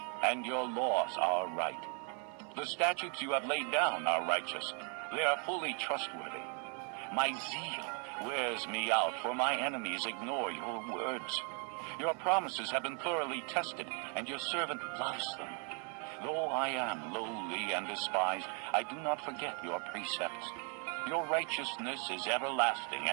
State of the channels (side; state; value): left; quieter; 38.8 dB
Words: and your laws are right. The statutes you have laid down are righteous. They are fully trustworthy. My zeal wears me out, for my enemies ignore your words. Your promises have been thoroughly tested, and your servant loves them. Though I am lowly and despised, I do not forget your precepts. Your righteousness is everlasting,